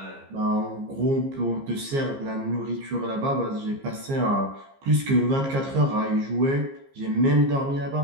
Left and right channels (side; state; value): left; late; 15 ms